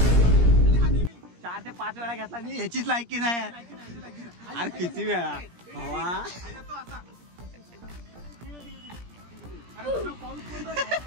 4 ते 5 वेळा घेतला मी, ह्याचीच लायकी नाही. अरे किती वेळा भावा.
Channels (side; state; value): left; late; 17 ms